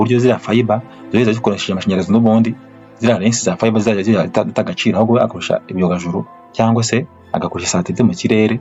ziriya fiber zizajya zikoresha amashanyarazi n'ubundi ziriya lensi za fiber zizajya zitagaciro, ahubwo akoresha ibyogajuru cyangwa se agakoresha satellite mu kirere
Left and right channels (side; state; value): both; identical; correlation 1.00